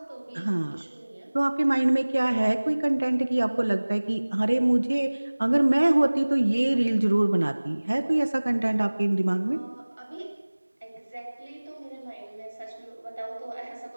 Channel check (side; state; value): both; inverted; correlation -1.00